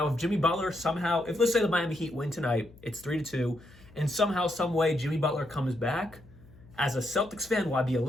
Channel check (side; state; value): left; noise; hum, 23 dB below the sound